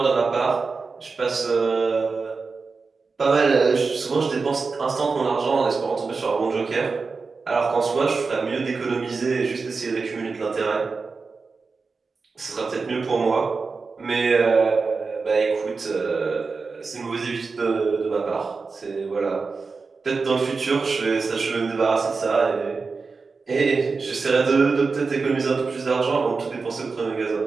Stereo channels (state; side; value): quieter; left; 4.5 dB